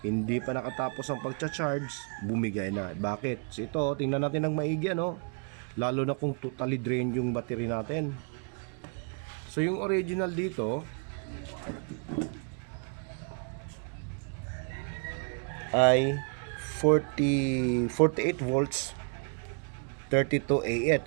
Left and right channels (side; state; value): left; quieter; 39.7 dB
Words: hindi pa nakatapos ang pagcha-charge, bumigay na. Bakit? So ito, tingnan natin ng maigi, ano? Lalo na kung totally drain yung battery natin. So yung original dito ay 48 volts 32 Ah.